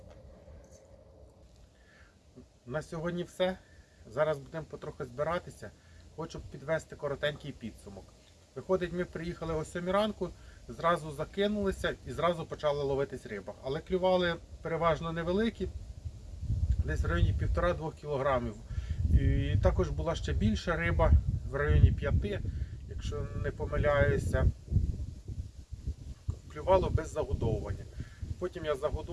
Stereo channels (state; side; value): identical; both; correlation 1.00